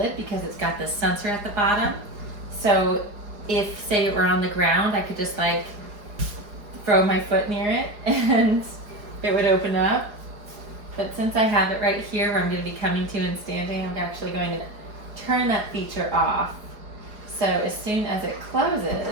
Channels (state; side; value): late; left; 4.8 ms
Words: because it's got this sensor at the bottom. So if, say it were on the ground, I could just like throw my foot near it and it would open up. But since I have it right here where I'm going to be coming to and standing, I'm actually going to turn that feature off. So as soon as it